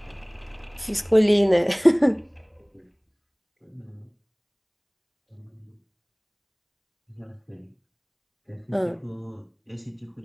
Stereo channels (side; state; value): both; identical; correlation 1.00